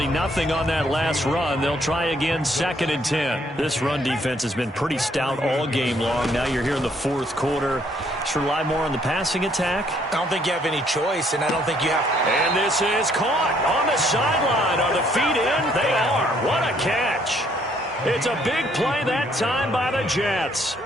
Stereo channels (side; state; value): both; normal; correlation 0.67